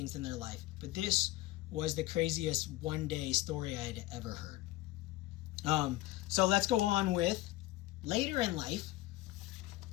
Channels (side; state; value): right; quieter; 17.4 dB